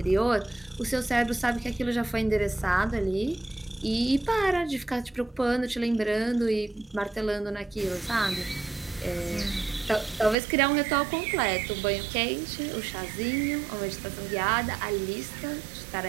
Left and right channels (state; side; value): drops out; left; at 10.4 s